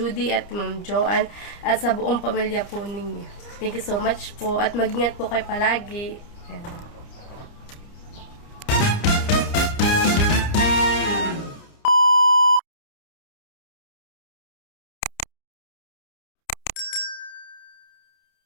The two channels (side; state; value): right; late; 29 ms